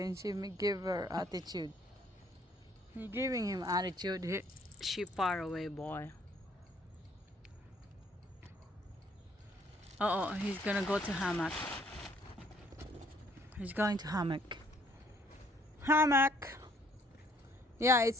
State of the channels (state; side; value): normal; both; correlation 0.63